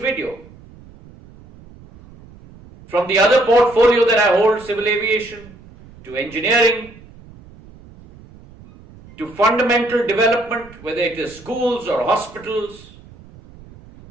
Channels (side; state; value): right; noise; rumble, 22 dB below the sound